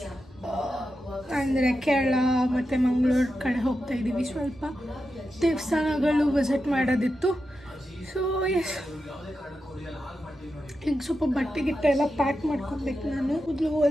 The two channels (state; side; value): normal; both; correlation 0.89